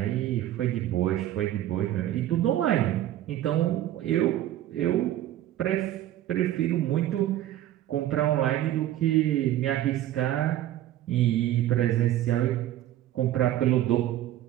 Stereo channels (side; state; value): left; quieter; 13.1 dB